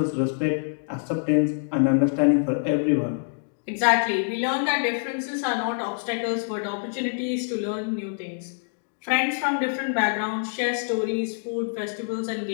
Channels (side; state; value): right; silent; digital silence